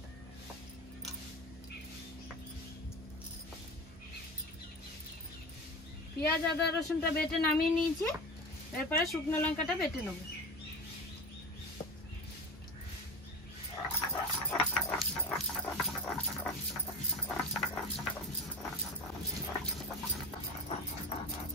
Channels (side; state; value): both; normal; correlation 0.27